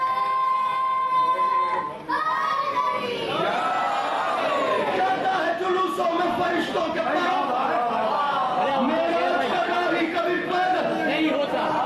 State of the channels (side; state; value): both; identical; correlation 1.00